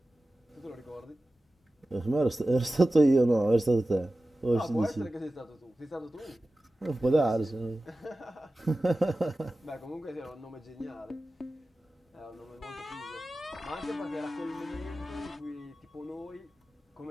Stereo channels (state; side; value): normal; both; correlation 0.95